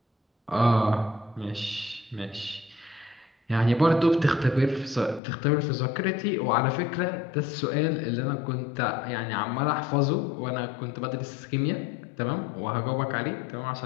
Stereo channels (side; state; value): right; drops out; at 5.2 s